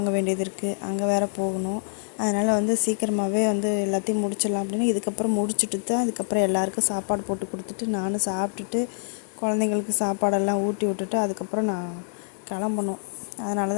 வேண்டியது இருக்குது, அங்கே வேறு போகணும். அதனால் வந்து சீக்கிரமாகவே வந்து எல்லாத்தையும் முடிச்சிடலாம் அப்படின்னு இதுக்கப்புறம் முடிச்சுட்டு தான் அதுக்கப்புறம் எல்லாேருக்கும் சாப்பாடு போட்டு கொடுத்துட்டு நானும் சாப்பிட்டுட்டு குழந்தைங்களுக்கு சாப்பாடெல்லாம் ஊட்டி விட்டுட்டு அதுக்கப்புறம் நான் கிளம்பணும். அதனால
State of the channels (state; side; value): silent; right; digital silence